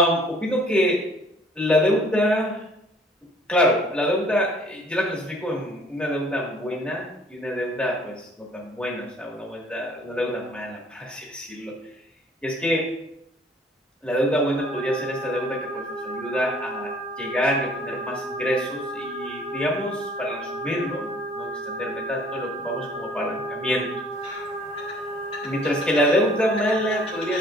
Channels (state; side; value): normal; both; correlation 0.56